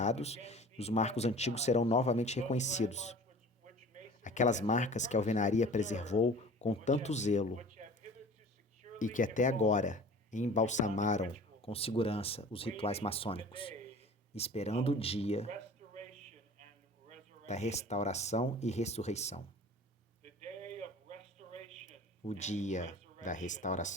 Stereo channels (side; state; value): both; normal; correlation 0.44